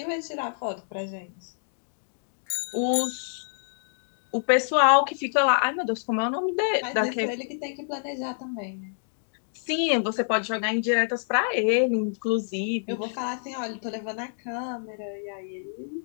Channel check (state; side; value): silent; right; digital silence